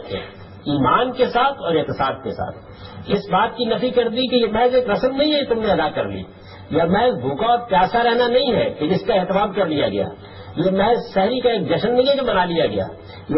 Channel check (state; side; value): identical; both; correlation 1.00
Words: ایمان کے ساتھ اور احتساب کے ساتھ. اس بات کی نفی کر دی کہ یہ محض ایک رسم نہیں ہے تم نے ادا کر لی، یا محض بھوکا اور پیاسا رہنا نہیں ہے کہ جس کا اہتمام کر لیا گیا. یہ محض شہری کا ایک جشن نہیں ہے جو منا لیا گیا،